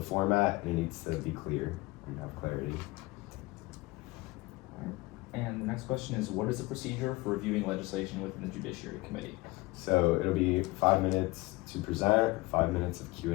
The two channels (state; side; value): quieter; right; 22.2 dB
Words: format, and it needs to be clear and have clarity. And the next question is, what is the procedure for reviewing legislation within the Judiciary Committee? So it'll be 5 minutes to present, 5 minutes of